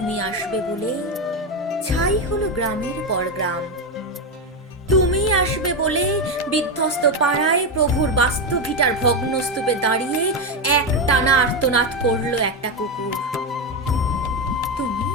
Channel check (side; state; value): both; normal; correlation 0.10